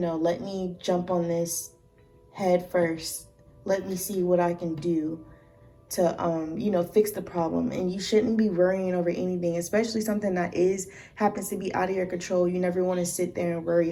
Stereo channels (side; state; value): both; identical; correlation 1.00